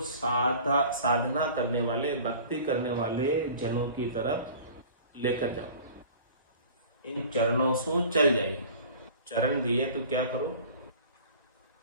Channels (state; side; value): inverted; both; correlation -0.44